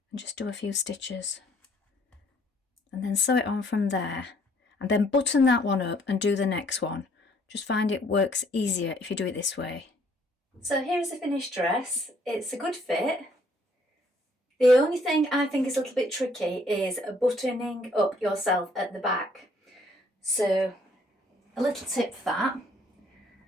and just do a few stitches and then sew it on from there, and then button that one up and do the next one. Just find it works easier if you do it this way. So here's the finished dress. It's a good fit. The only thing I think is a little bit tricky is buttoning up yourself at the back. So a little tip for that.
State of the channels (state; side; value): normal; both; correlation 0.64